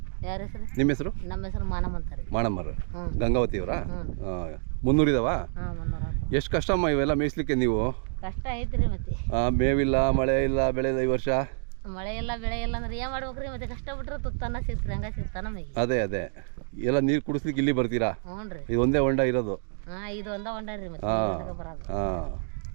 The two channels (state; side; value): silent; left; digital silence